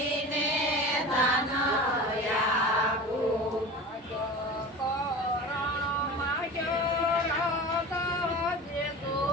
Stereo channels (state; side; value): normal; both; correlation 0.33